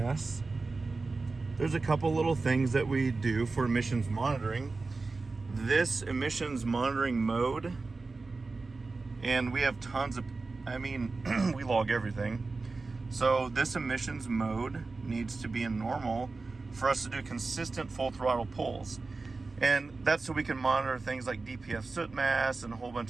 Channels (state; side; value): quieter; left; 3.8 dB